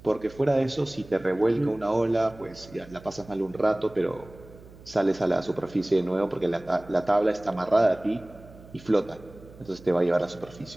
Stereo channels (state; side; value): noise; right; hum, 20 dB below the sound